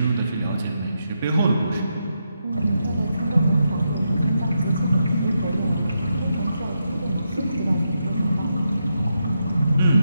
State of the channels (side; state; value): both; inverted; correlation -0.83